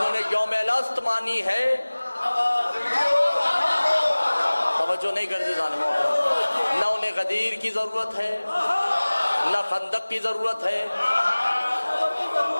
نے یوم الست مانی ہے, توجہ نہیں کرتے ظالموں, نہ انہیں غدیر کی ضرورت ہے نہ خندق کی ضرورت ہے.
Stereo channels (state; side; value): inverted; both; correlation -1.00